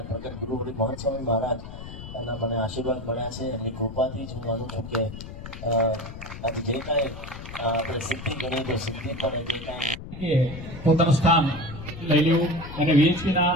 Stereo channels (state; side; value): noise; left; rumble, 11 dB below the sound